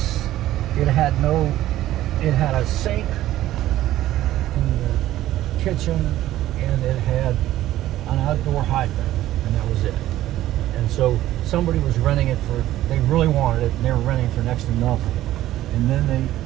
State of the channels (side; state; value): left; quieter; 14.2 dB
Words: it had a sink in the kitchen, and it had an outdoor hydrant, and that was it. And so somebody was renting it they really wanted it, and they were renting it for next to nothing. And then they